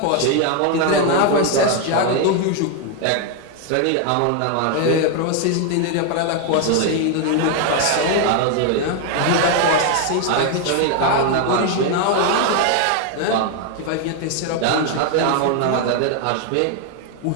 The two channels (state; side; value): different; both; correlation 0.01